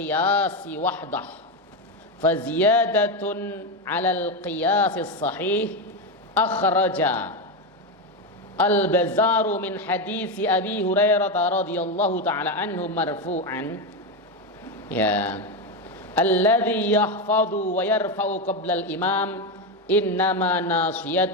wahdah fa ziyadatun 'ala al-qiyas as-sahih akhraja al-Bazzaru min hadits Abi Hurairah radhiyallahu ta'ala anhu marfu'an ya alladhi yahfadhu wa yarfa'u qabla al-imam innama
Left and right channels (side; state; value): both; normal; correlation 0.11